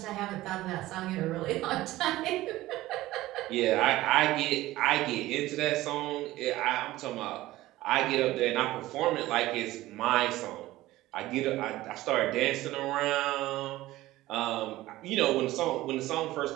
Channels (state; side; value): quieter; left; 16.8 dB